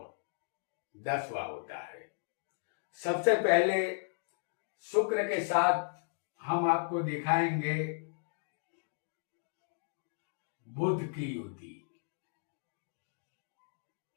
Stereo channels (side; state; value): right; silent; digital silence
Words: 10वां होता है। सबसे पहले शुक्र के साथ हम आपको दिखाएंगे बुध की युति।